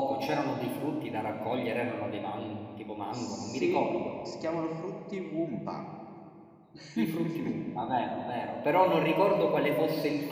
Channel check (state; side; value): identical; both; correlation 1.00